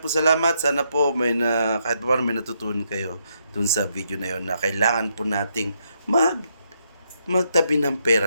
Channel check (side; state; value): both; inverted; correlation -0.77